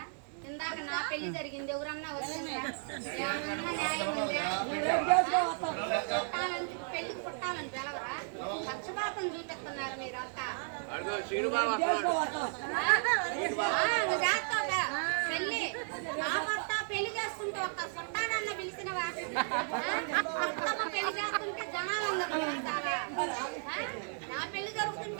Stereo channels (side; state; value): left; silent; 55 dB below the other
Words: ఇందాక నా పెళ్లి జరిగింది, ఎవరన్నా వచ్చిండ్రా? ఏమన్నా న్యాయం ఉందా? పెళ్లికి చుట్టాలని పిలవరా? పక్షపాతం చూపిస్తున్నారు మీరంతా. పెళ్లి నా భర్త పెళ్లి చేసుకుంటే ఒక్క చుట్టాలన్న పిలిచినవా? బతుకమ్మ పెళ్లి చేస్తుంటే జనాలందరూ పిలుస్తారా? నా పెళ్లి